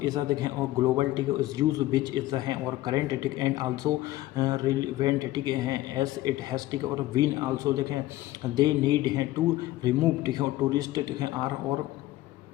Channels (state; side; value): quieter; right; 16.4 dB